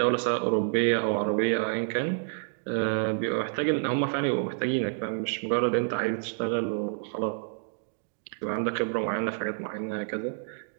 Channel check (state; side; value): silent; left; digital silence